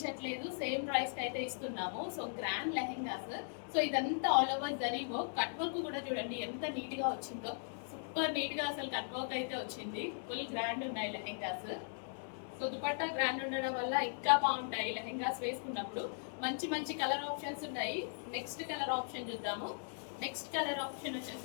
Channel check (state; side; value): silent; right; digital silence